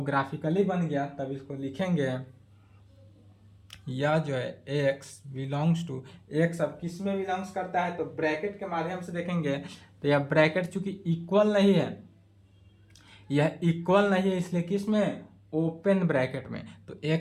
ग्राफिकली बन गया, तब इसको लिखेंगे। यह जो है x बिलोंग्स टू, x अब किस में बिलोंग्स करता है? तो ब्रैकेट के माध्यम से देखेंगे, तो यह ब्रैकेट चूंकि इक्वल नहीं है, यह इक्वल नहीं है, इसलिए किस में? ओपन ब्रैकेट में। तो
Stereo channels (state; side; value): identical; both; correlation 1.00